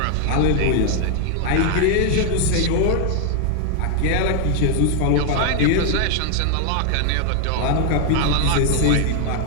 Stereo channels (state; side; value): different; both; correlation 0.01